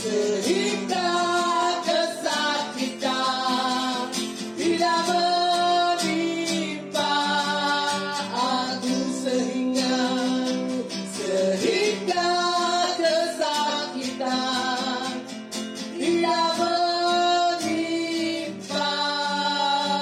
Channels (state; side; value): identical; both; correlation 1.00